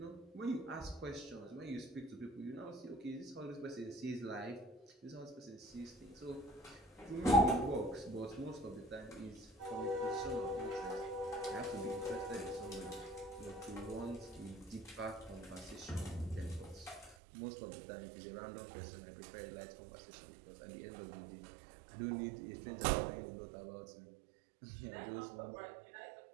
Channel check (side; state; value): left; drops out; at 17.2 s